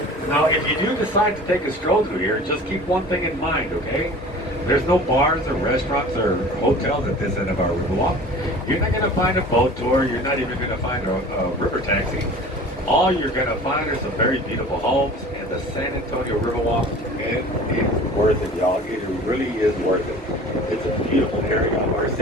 Now, if you do decide to take a stroll through here, just keep one thing in mind, okay? There's no bars or restaurants or hotels at this end of our Riverwalk. You're not going to find a boat tour. You're not even going to find a river taxi. All you're going to find are some very beautiful homes and the San Antonio Riverwalk. It is worth it, y'all. It really is worth it. It's a beautiful area of our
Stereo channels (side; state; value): both; normal; correlation 0.42